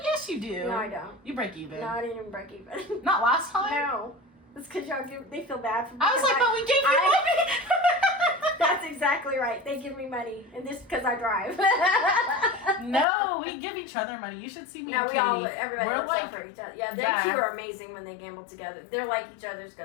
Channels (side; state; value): right; drops out; at 13.1 s